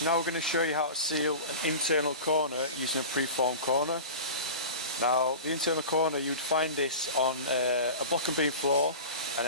now we're going to show you how to seal an internal corner using a preformed corner. Now, the internal corner, you'd find this on a block and beam floor, and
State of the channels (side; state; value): both; inverted; correlation -0.33